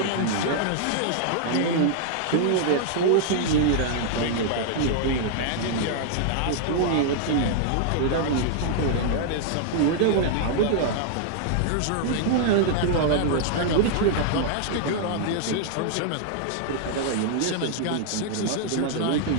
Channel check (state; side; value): different; both; correlation -0.01